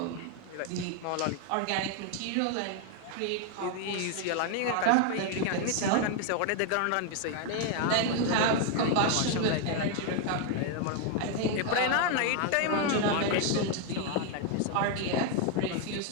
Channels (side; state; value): both; different; correlation 0.01